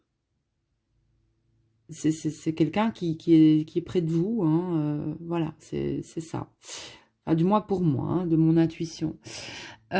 quelqu'un qui est près de vous, hein, voilà, c'est ça. Enfin, du moins pour moi, hein, de mon intuition.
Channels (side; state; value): both; identical; correlation 1.00